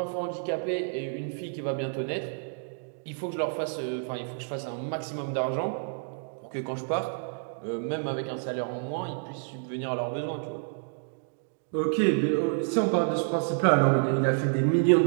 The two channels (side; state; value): left; silent; digital silence